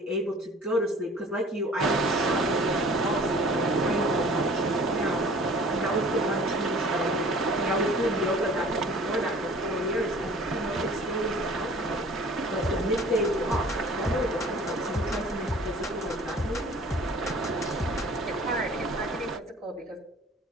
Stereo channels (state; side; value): normal; both; correlation 0.48